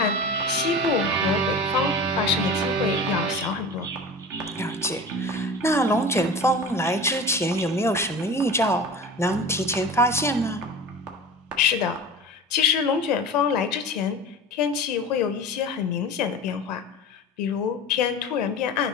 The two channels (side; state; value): both; normal; correlation 0.34